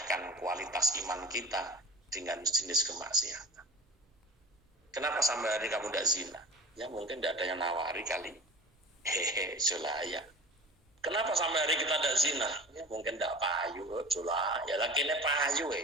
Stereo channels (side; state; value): both; normal; correlation 0.38